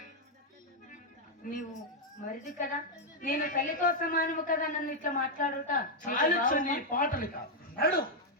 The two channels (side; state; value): both; normal; correlation -0.01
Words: నీవు మరిది కదా, నేను తల్లితో సమానము కదా, నన్ను ఇట్లా మాట్లాడుట చాలించు నీ పాటలు కాదు. నడు.